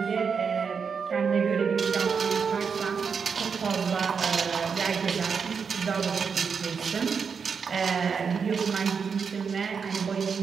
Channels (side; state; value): left; quieter; 6.0 dB